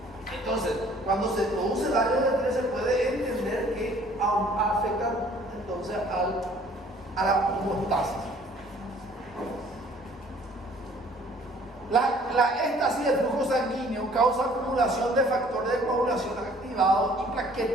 Entonces, cuando se produce daño del endotelio se puede entender que afecta entonces a la homeostasis. La éstasis del flujo sanguíneo causa acumulación de factores de coagulación activados y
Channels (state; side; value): normal; both; correlation 0.56